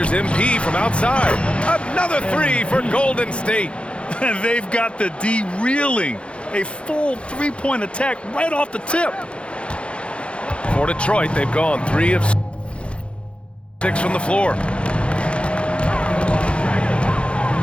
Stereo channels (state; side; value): late; right; 0.059 ms